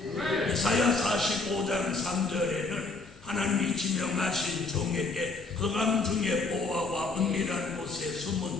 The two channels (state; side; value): quieter; right; 3.7 dB